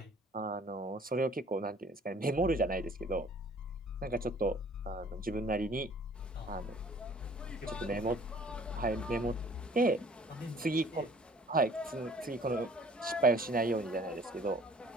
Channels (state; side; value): normal; both; correlation 0.54